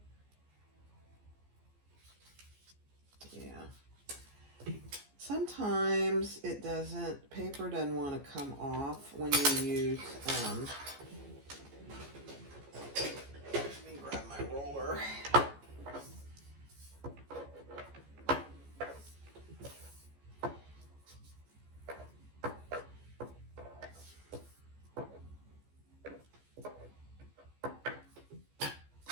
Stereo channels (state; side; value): late; left; 14 ms